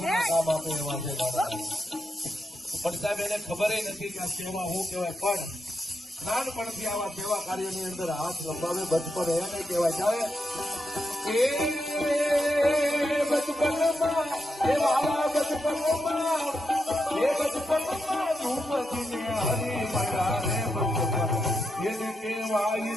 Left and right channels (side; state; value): both; normal; correlation 0.85